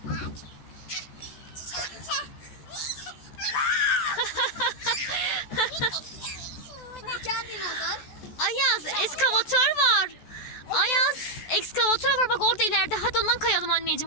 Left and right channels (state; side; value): late; right; 14 ms